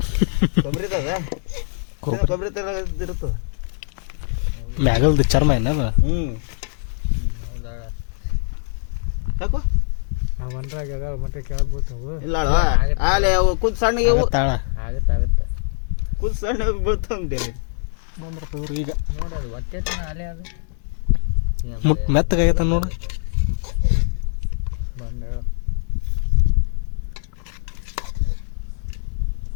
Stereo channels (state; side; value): silent; right; 64 dB below the other